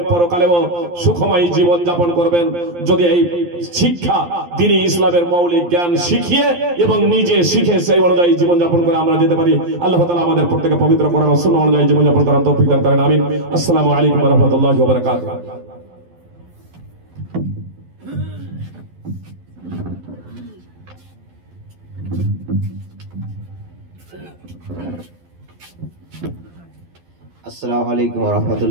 পরকালেও সুখময় জীবন যাপন করবেন। যদি এই শিক্ষা, দ্বীনি ইসলামের মৌলিক জ্ঞান শিখিয়ে এবং নিজে শিখে সেই অনুযায়ী জীবন যাপন করে আমরা যেতে পারি, আল্লাহ তাআলা আমাদের প্রত্যেককে পবিত্র করার সুন্নাহ অনুযায়ী জীবন যাপন করার তৌফিক দান করেন। আমিন। আসসালামু আলাইকুম ওয়া রাহমাতুল্লাহি ওয়া বারাকাতুহু। আসসালামু আলাইকুম ওয়া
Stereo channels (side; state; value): left; late; 12 ms